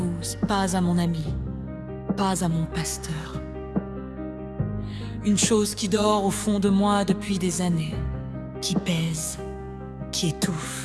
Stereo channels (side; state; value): both; identical; correlation 1.00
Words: pas à mon ami, pas à mon pasteur. Une chose qui dort au fond de moi depuis des années, qui pèse, qui